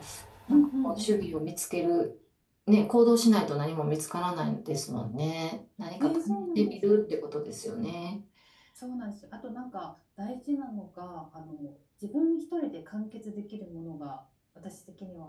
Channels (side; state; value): both; identical; correlation 1.00